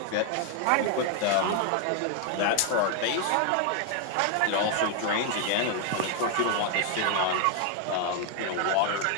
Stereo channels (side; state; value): both; different; correlation 0.01